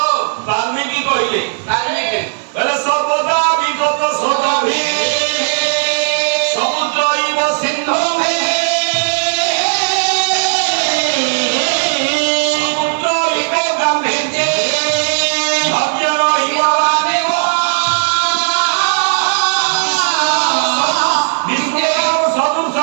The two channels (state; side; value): silent; left; digital silence